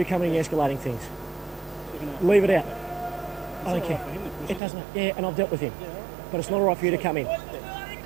coming and escalating things. Leave it out. I don't care. It doesn't. Yeah, and I've dealt with him. But it's not all right for you to come in.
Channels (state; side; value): drops out; left; at 4.6 s